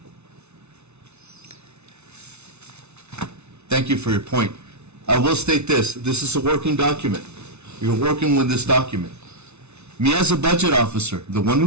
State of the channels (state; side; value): late; left; 0.81 ms